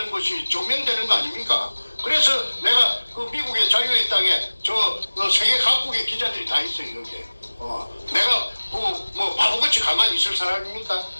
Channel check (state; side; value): inverted; both; correlation -1.00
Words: 것이 증명되는 거 아닙니까? 그래서 내가 미국의 자유의 땅에 세계 각국의 기자들이 다 있어요, 여기에. 내가 바보같이 가만히 있을 사람입니까?